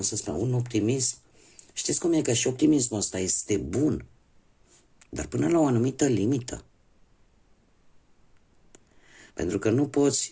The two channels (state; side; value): identical; both; correlation 1.00